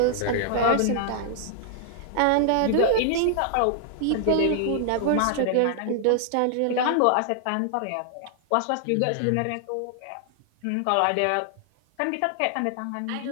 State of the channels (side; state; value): both; different; correlation 0.00